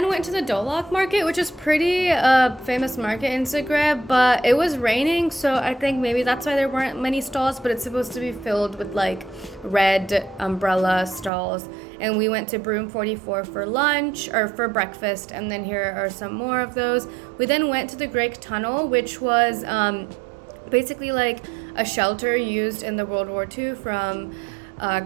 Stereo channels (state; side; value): drops out; left; at 11.3 s